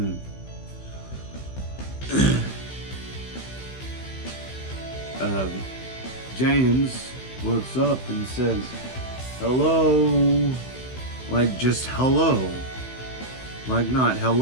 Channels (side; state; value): right; late; 16 ms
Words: James looks up and says, "Hello," like just hello, like not